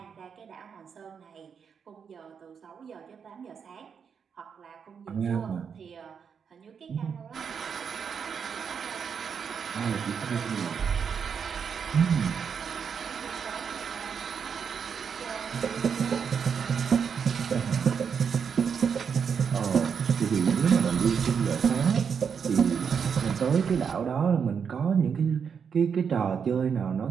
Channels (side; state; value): left; quieter; 6.7 dB